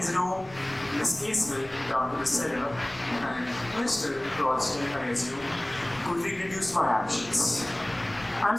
room. Miss Casewell down to the cellar. And Mr. Ralston, I assume, could reproduce my actions.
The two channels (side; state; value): left; noise; rumble, 22 dB below the sound